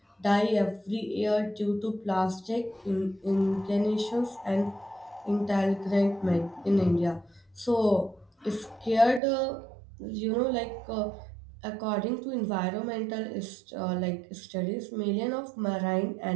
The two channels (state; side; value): drops out; left; at 9.2 s